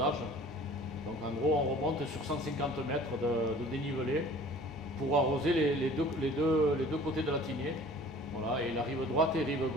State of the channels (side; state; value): both; normal; correlation 0.48